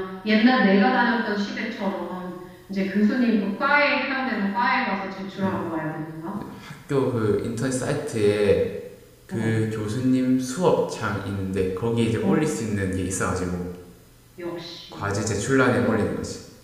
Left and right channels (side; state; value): both; identical; correlation 1.00